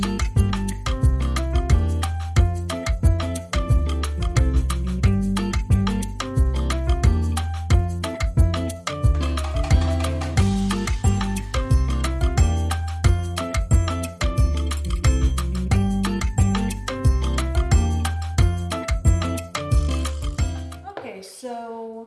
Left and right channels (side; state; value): both; identical; correlation 1.00